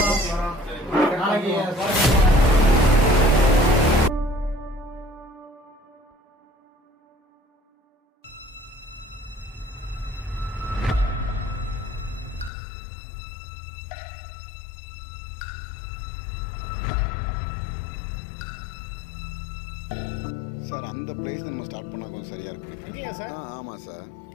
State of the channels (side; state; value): right; drops out; at 12.5 s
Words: சார், அந்த பிளேஸ் நம்ம ஸ்டார்ட் பண்ணால் கொஞ்சம் சரியாக இருக்கும். இல்லையா சார்? ஆமாம் சார்.